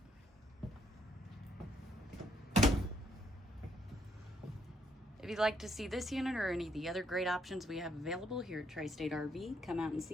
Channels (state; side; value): normal; both; correlation 0.72